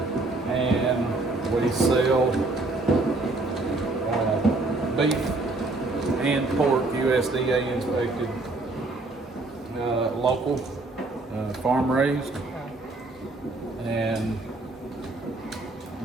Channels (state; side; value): quieter; left; 3.1 dB